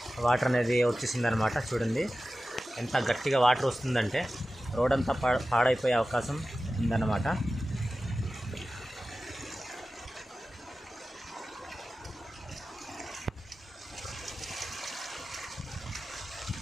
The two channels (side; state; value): both; normal; correlation 0.95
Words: వాటర్ అనేది వచ్చేసిందనమాట. చూడండి ఎంత గట్టిగా వాటర్ వస్తుందంటే రోడ్ అంతా పాడైపోయే అవకాశం ఉందన్నమాట.